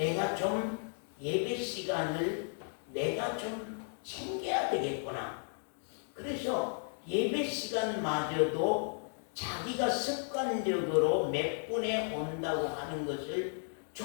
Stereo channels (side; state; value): right; silent; 55 dB below the other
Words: 좀 예배 시간을 내가 좀 챙겨야 되겠구나. 그래서 예배 시간마저도 자기가 습관적으로 몇 분에 온다고 하는 것을